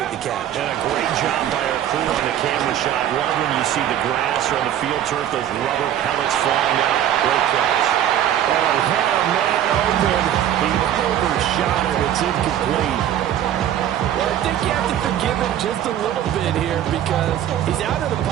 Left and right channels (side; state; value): left; quieter; 11.0 dB